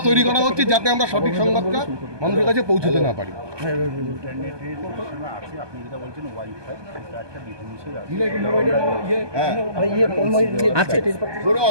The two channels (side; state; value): left; late; 1.2 ms